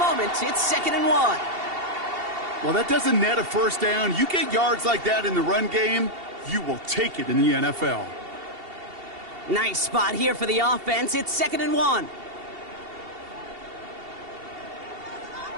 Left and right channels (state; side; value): late; left; 2.7 ms